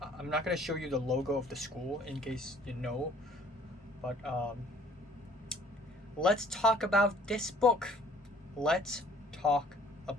I'm not gonna show you the logo of the school in case you know, but let's talk about this book. Let's talk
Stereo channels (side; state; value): both; normal; correlation 0.55